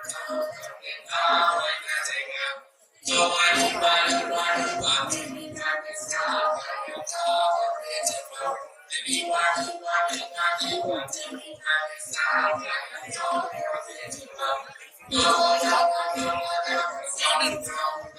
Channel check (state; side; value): identical; both; correlation 1.00